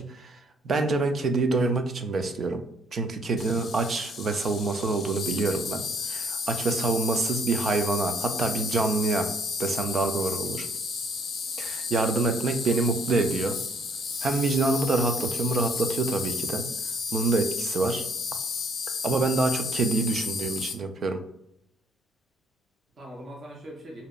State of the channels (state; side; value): normal; both; correlation 0.64